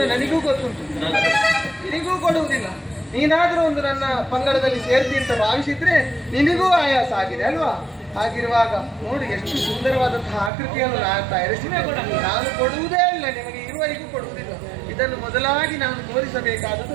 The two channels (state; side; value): drops out; left; at 10.5 s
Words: ನನಗೂ ಗೊತ್ತುಂಟು, ನಿನಗೂ ಕೊಡುವುದಿಲ್ಲ. ನೀನಾದ್ರೂ ಒಂದು ನನ್ನ ಪಂಗಡದಲ್ಲಿ ಸೇರ್ತಿ ಅಂತ ಭಾವಿಸಿದ್ರೆ ನಿನಗೂ ಆಯಾಸ ಆಗಿದೆ ಅಲ್ವಾ? ಹಾಗಿರುವಾಗ ನೋಡಿ ಎಷ್ಟು ಸುಂದರವಾದಂತಹ ಆಕೃತಿಯನ್ನು ನಾನು ತಯಾರಿಸಿದ್ದೇನೆ. ನಾನು ಕೊಡುವುದೇ ಇಲ್ಲ, ನಿಮಗೆ ಇರುವವರೆಗೂ ಕೊಡುವುದಿಲ್ಲ. ಇದನ್ನು ಮೊದಲಾಗಿ ನಾನು